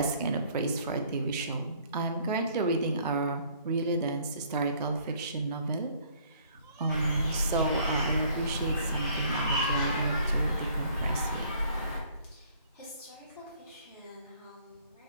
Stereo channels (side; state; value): both; inverted; correlation -0.59